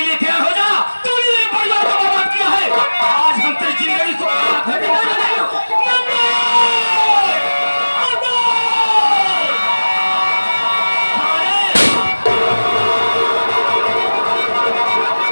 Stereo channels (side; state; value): both; inverted; correlation -1.00